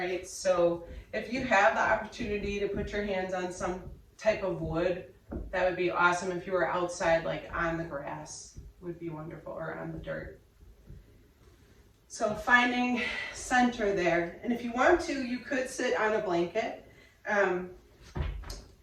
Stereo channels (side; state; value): both; identical; correlation 1.00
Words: So if you have the opportunity to put your hands on some type of wood, that would be awesome. If you were outside, like on the grass, would be wonderful, or on the dirt. So finding center there. And if you want to, you could sit on a blanket